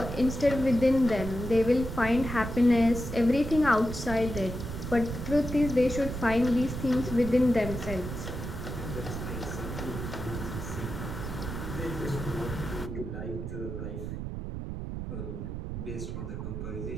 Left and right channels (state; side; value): noise; right; rumble, 6 dB below the sound